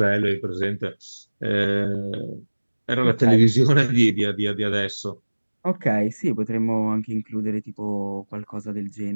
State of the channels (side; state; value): both; inverted; correlation -1.00